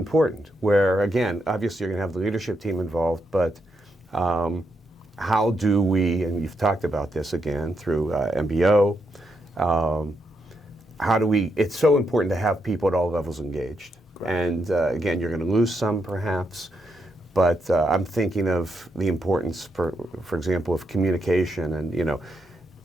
where, again, obviously you're going to have the leadership team involved, but how do we, and you've talked about this again through MBO, how do we, it's so important to have people at all levels engaged. Right. And again, you're going to lose some perhaps, but I'm thinking of the importance, for example, of communication. And, you know,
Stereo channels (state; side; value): normal; both; correlation 0.81